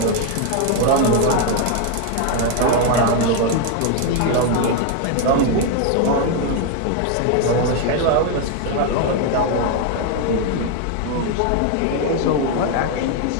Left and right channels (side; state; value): both; different; correlation 0.01